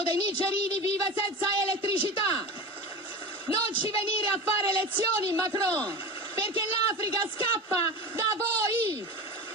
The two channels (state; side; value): normal; both; correlation 0.29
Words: dei nigerini vive senza elettricità. Non ci venire a fare lezioni, Macron, perché l'Africa scappa da voi